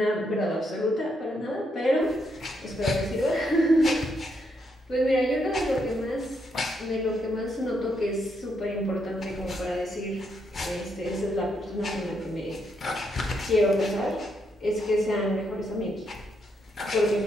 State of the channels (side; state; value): both; normal; correlation 0.78